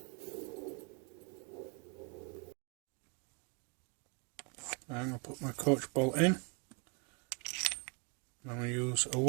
I'm going to put my coach bolt in. I'm going to use a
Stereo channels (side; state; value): left; quieter; 33.1 dB